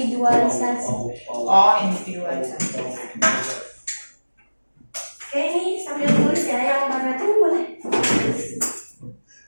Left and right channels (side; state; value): both; inverted; correlation -1.00